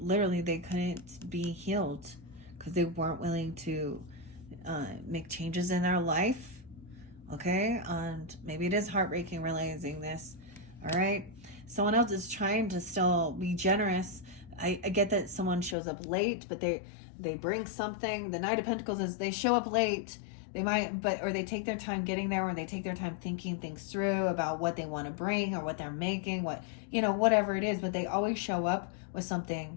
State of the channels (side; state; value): right; drops out; at 15.8 s